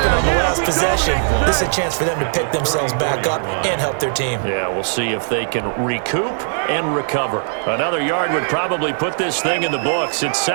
on the last possession. This is a chance for them to pick themselves back up and help their team. Yeah, we'll see if they can recoup and recover. Another yard would probably put this thing in the books. It's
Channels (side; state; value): left; silent; digital silence